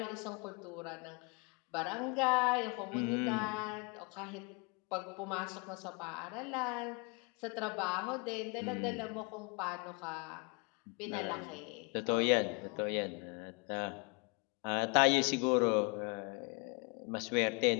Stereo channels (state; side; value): quieter; right; 31.4 dB